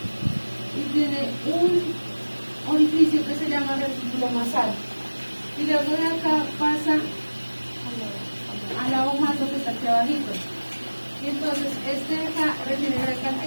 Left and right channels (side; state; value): both; inverted; correlation -1.00